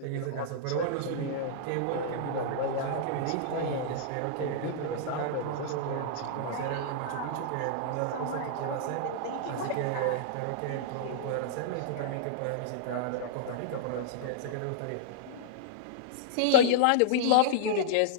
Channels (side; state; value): both; different; correlation -0.02